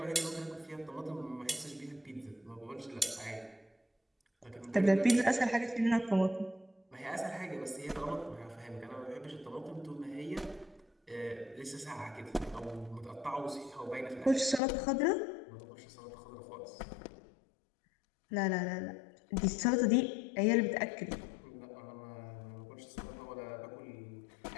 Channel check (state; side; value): drops out; right; at 14.6 s